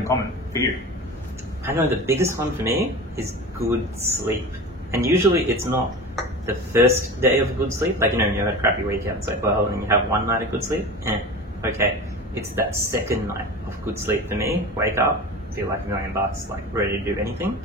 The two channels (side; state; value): both; normal; correlation 0.32